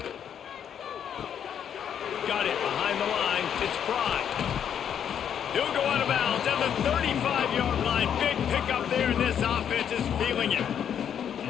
Got it behind the line. It's Pride. He'll go out of bounds at the 35-yard line. Big pickup there, and this offense is feeling it.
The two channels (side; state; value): right; quieter; 8.7 dB